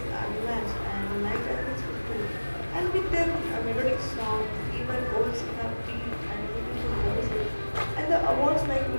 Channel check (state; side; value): inverted; both; correlation -1.00